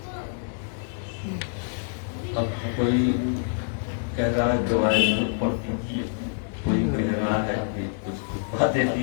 اب کوئی کہہ رہا ہے دعائیں پڑھ دیجیے, کوئی کہہ رہا ہے کہ کچھ باتیں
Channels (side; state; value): right; silent; digital silence